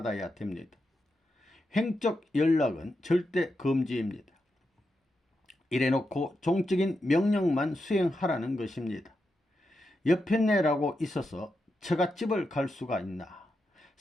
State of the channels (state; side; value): normal; both; correlation 0.86